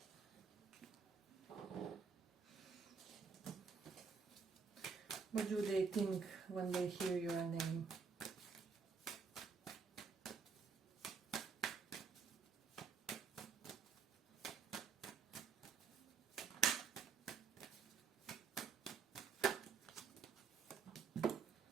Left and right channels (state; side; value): quieter; left; 5.5 dB